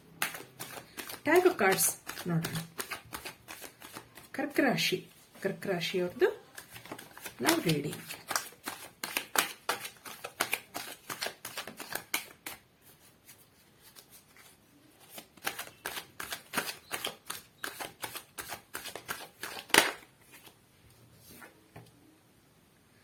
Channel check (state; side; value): identical; both; correlation 1.00